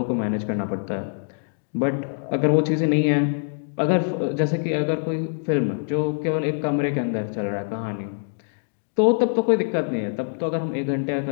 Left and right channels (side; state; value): right; silent; digital silence